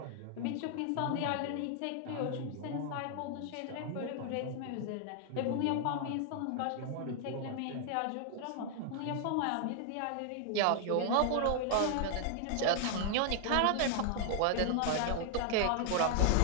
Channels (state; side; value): different; both; correlation 0.00